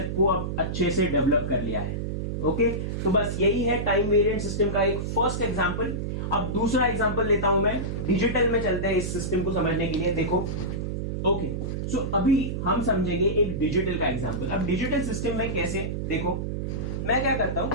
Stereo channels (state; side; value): noise; right; hum, 3 dB below the sound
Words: को अब अच्छे से डेवलप कर लिया है। ओके, तो बस यही है टाइम वेरिएंट सिस्टम का एक फर्स्ट एग्जांपल। अब दूसरा एग्जांपल लेता हूं मैं, डिजिटल में चलते हैं इस सिस्टम को समझने के लिए। देखो, ओके, सो अभी हम समझेंगे एक डिजिटल का एग्जांपल। अब डिजिटल सिस्टम में कैसे, देखो मैं क्या करता हूं,